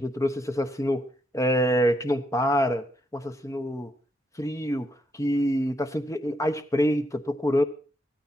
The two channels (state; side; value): normal; both; correlation 0.78